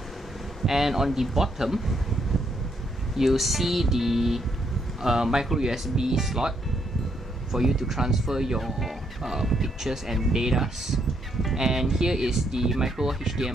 And on the bottom you'll see the micro USB slot for you to transfer your pictures and datas. And here is the micro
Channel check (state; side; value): normal; both; correlation 0.75